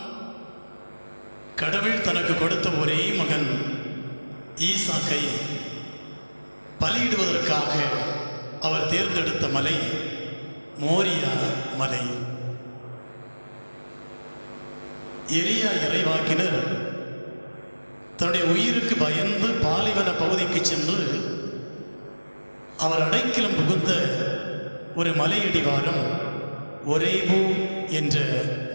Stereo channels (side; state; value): both; inverted; correlation -1.00